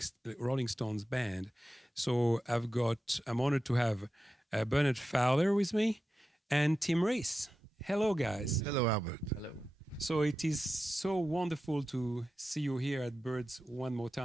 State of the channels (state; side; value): normal; both; correlation 0.92